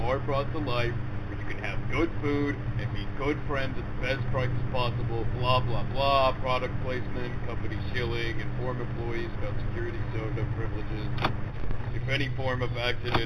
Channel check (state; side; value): identical; both; correlation 1.00